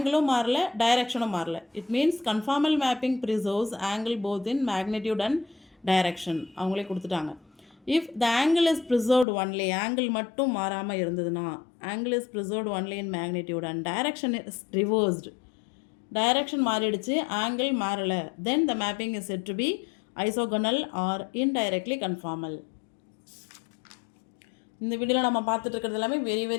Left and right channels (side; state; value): right; drops out; at 9.2 s